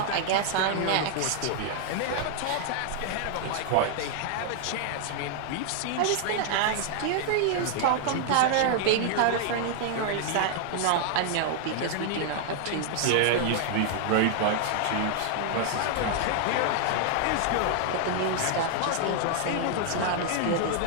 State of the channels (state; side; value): different; both; correlation 0.00